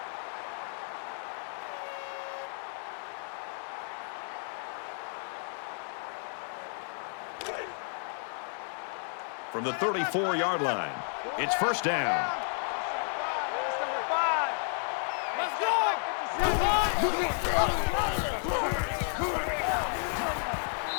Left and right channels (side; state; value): right; silent; 56 dB below the other